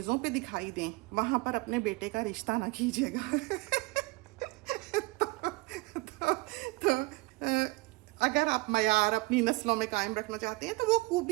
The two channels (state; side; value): quieter; left; 23.1 dB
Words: पे दिखाई दें, वहाँ पर अपने बेटे का रिश्ता ना कीजिएगा। तो अगर आप मयार अपनी नस्लों में कायम रखना चाहते हैं तो वो